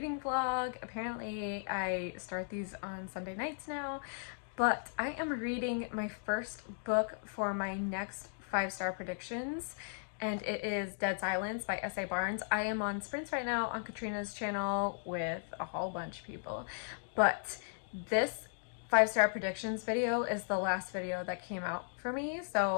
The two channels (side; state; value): right; silent; digital silence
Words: vlog. Apparently I start these on Sunday nights now, but I am reading my first book for my next 5-star predictions, and it is Dead Silence by S.A. Barnes. I am on sprints right now on Katrina's channel with a whole bunch of people, but this 5-star predictions video is the last video that came out for me,